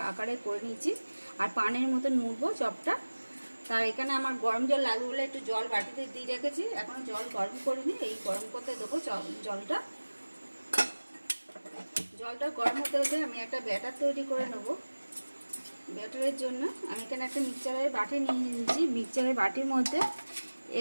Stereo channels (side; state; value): both; inverted; correlation -1.00